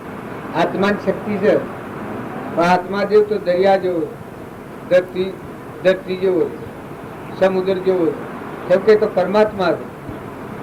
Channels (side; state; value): both; identical; correlation 1.00